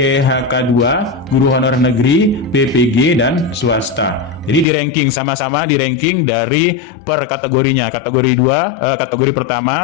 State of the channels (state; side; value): drops out; right; at 4.7 s